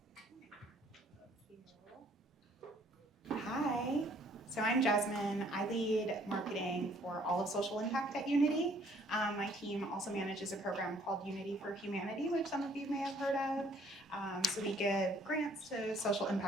Hi, so I'm Jasmin. I lead marketing for all of social impact at Unity. My team also manages a program called Unity for Humanity, which some of you may have heard of. So we give grants to social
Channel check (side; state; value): both; normal; correlation 0.61